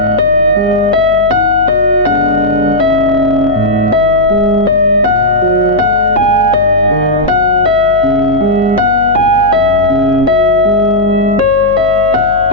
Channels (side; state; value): left; noise; hum, 15 dB below the sound